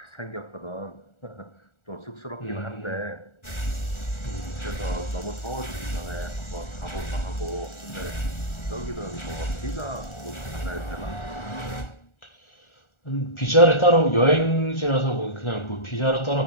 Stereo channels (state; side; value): late; right; 1.4 ms